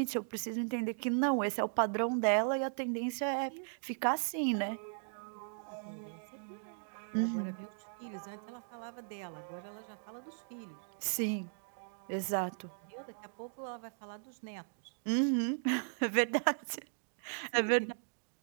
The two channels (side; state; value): left; silent; digital silence